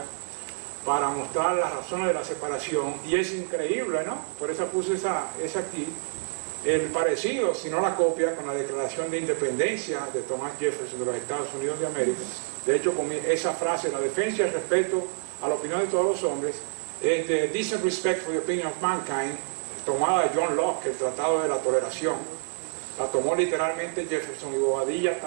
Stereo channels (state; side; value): silent; left; digital silence